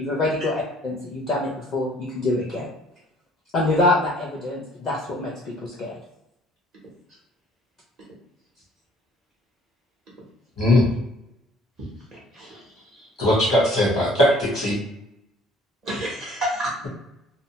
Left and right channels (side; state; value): both; normal; correlation 0.57